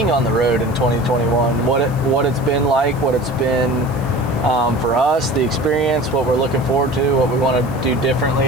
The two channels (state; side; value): noise; right; hiss, 24 dB below the sound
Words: on the road in 2021, what it's been like, what it's been for us, the experience, what we're looking forward to, what we want to do